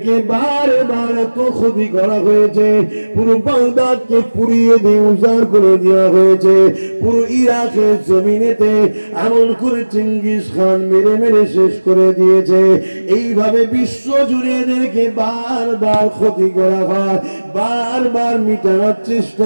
বারবার এত ক্ষতি করা হয়েছে, পুরো বাগদাদকে পুড়িয়ে দিয়ে উজাড় করে দেওয়া হয়েছে, পুরো ইরাকের জমিনেতে এমন করে চিঙ্গিস খান মেরে মেরে শেষ করে দিয়েছে। এইভাবে বিশ্ব জুড়ে এদেরকে বারবার ক্ষতি করা হয়, বারবার মিটানোর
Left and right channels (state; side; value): inverted; both; correlation -1.00